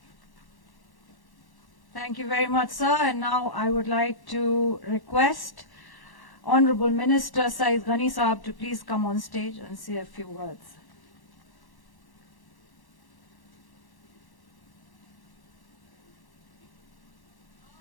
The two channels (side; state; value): right; late; 1.1 ms